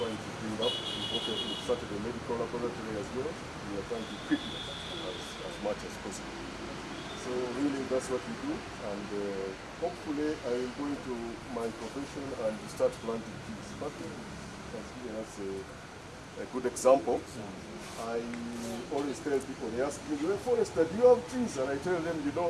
trying to build up. We've started a medical laboratory as well. We are trying to equip it as much as possible. So really that's what we do, and hopefully I will go into my profession and start planting trees. But has given us a good example. I always tell people, they ask me, you're a forester, do you have trees? And I tell them, you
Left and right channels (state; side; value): identical; both; correlation 1.00